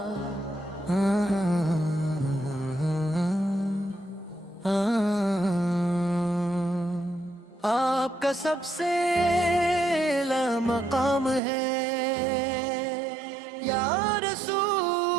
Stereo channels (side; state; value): left; drops out; at 11.4 s